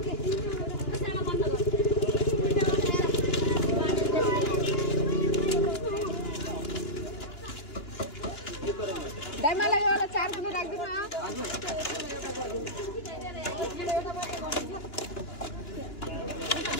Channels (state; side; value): late; right; 2.8 ms